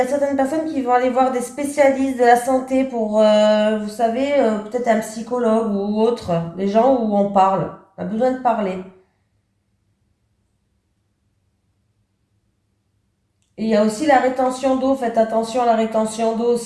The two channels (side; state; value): both; identical; correlation 1.00